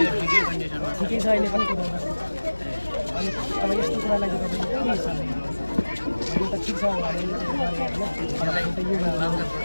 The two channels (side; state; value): both; inverted; correlation -1.00